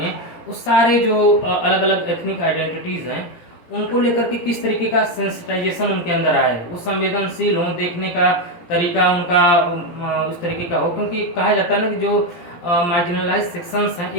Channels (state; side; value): late; right; 17 ms